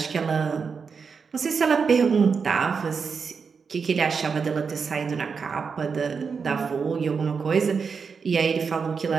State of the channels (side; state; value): left; quieter; 5.6 dB